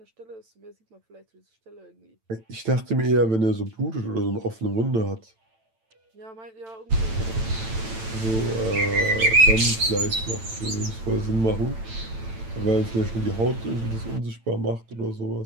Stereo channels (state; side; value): late; left; 9.0 ms